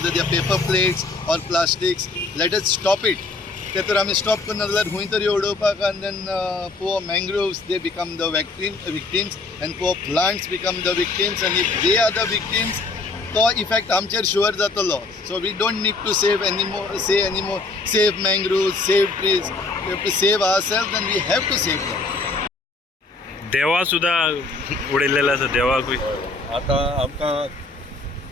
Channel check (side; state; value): right; quieter; 3.5 dB